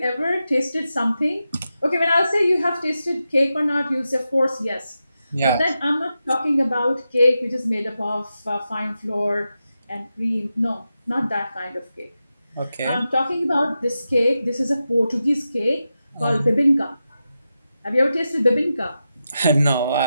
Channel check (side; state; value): both; inverted; correlation -0.90